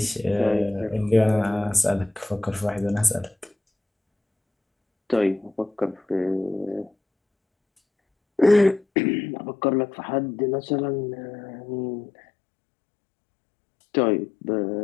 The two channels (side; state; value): right; drops out; at 8.8 s